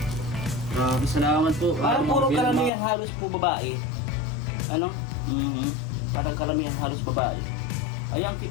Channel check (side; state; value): right; drops out; at 2.7 s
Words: Grabe, salamat po. Parang puro karamihan halos po babae. Ano? Mhm. Parang karamihan halos babae. Ay, ang